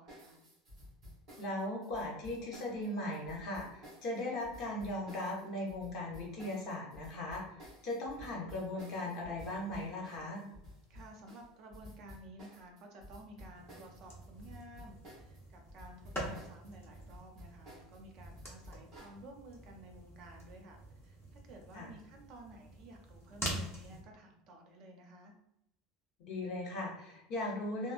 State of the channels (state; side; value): normal; both; correlation 0.31